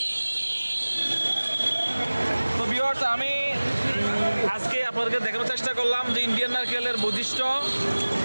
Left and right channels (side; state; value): both; inverted; correlation -1.00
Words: তো ভিউয়ার্স, আমি আজকে আপনাদেরকে দেখানোর চেষ্টা করলাম যে ইন্ডিয়ান নারকেলের বৈশিষ্ট্য